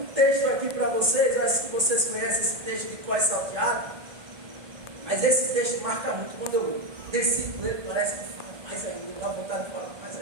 texto aqui para vocês. Eu acho que vocês conhecem esse texto de Cós Salteado, mas esse texto marca muito. Quando eu desci com ele, parece que fala mais ainda, dá vontade de falar mais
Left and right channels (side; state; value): left; late; 1.2 ms